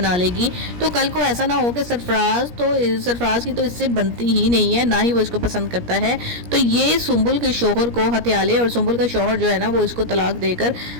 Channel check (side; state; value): left; late; 17 ms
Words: लेगी। तो कल को ऐसा ना हो कि सरफराज की तो इससे बनती ही नहीं है, ना ही वो इसको पसंद करता है, तो ये सुंबुल के शौहर को हथिया ले और सुंबुल का शौहर जो है ना वो इसको तलाक देकर